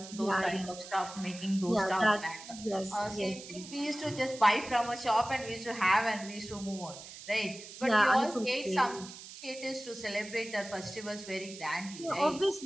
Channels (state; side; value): noise; right; hiss, 14 dB below the sound